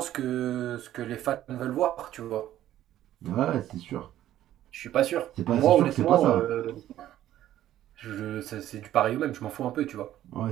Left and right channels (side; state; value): left; quieter; 12.8 dB